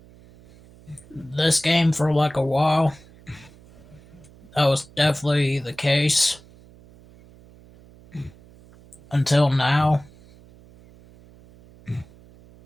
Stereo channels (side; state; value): right; noise; hum, 24 dB below the sound